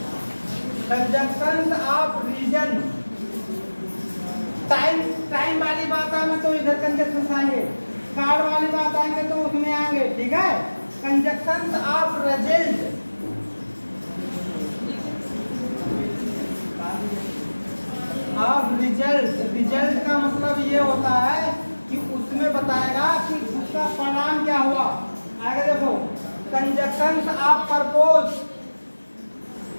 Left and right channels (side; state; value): both; inverted; correlation -1.00